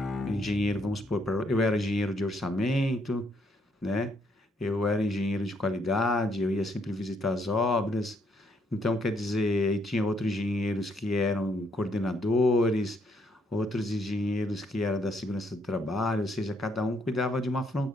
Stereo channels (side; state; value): both; normal; correlation 0.72